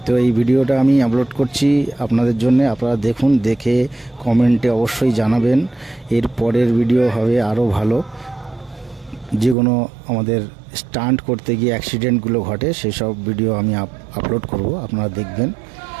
তো এই ভিডিওটা আমি আপলোড করছি আপনাদের জন্য। আপনারা দেখুন, দেখে কমেন্টে অবশ্যই জানাবেন এর পরের ভিডিও হবে আরও ভালো। যে কোনো আমাদের স্টান্ট করতে গিয়ে অ্যাক্সিডেন্টগুলো ঘটে সেই সব ভিডিও আমি আপলোড করব, আপনারা দেখবেন।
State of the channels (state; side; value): drops out; left; at 9.6 s